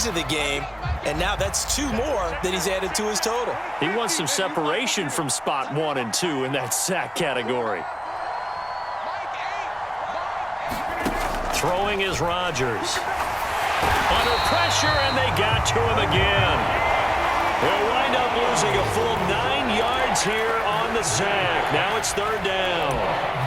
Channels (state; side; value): identical; both; correlation 1.00